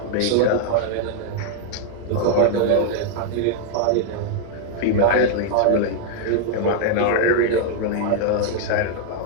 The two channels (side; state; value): both; different; correlation 0.00